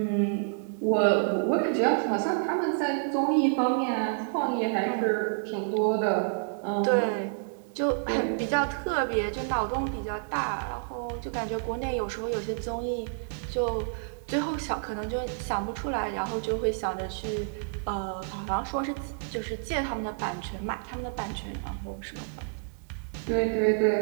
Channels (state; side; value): silent; left; digital silence